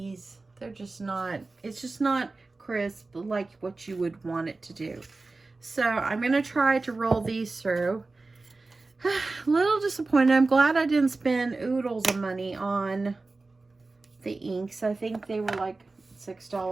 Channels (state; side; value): quieter; left; 3.5 dB